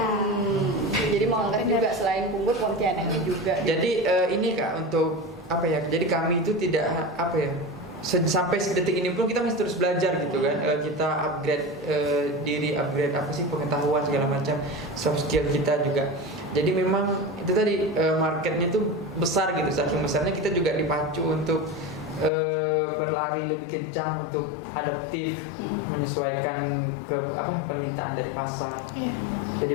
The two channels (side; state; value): right; drops out; at 22.3 s